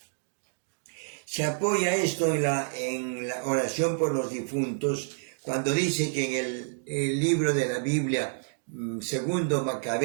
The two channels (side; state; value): left; silent; digital silence